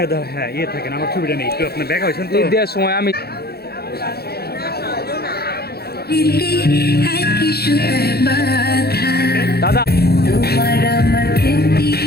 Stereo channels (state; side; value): late; right; 0.46 ms